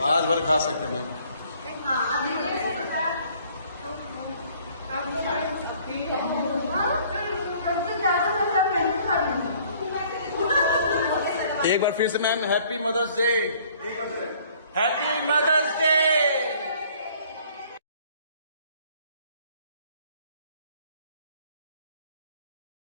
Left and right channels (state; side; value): inverted; both; correlation -0.58